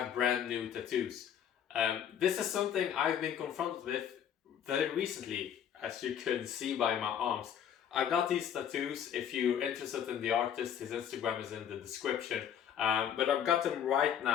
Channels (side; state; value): right; quieter; 9.0 dB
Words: brand new tattoos. This is something I've been confronted with very recently, as you can see by my arms. I got these tattoos. If you're interested in the artist, his Instagram is in the description. But I've got them right